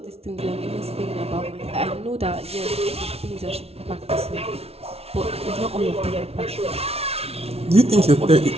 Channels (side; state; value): left; late; 0.30 ms